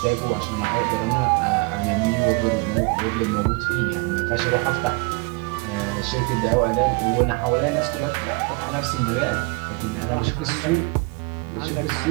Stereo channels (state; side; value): quieter; left; 28.6 dB